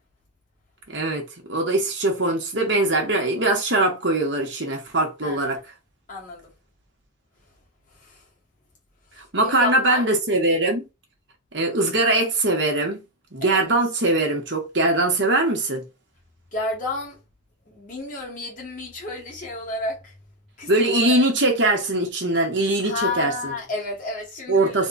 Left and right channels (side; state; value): both; normal; correlation 0.02